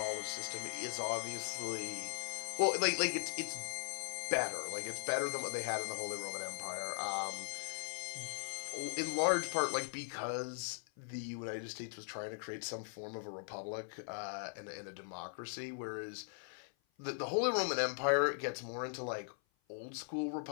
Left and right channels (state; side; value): silent; right; 51 dB below the other